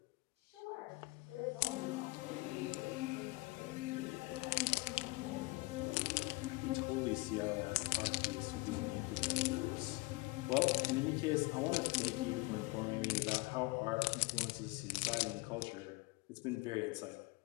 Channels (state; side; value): quieter; right; 24.5 dB